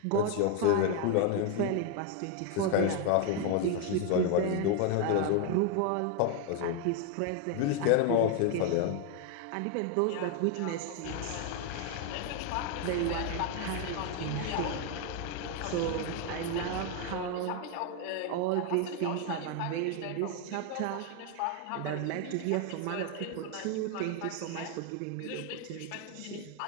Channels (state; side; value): different; both; correlation 0.01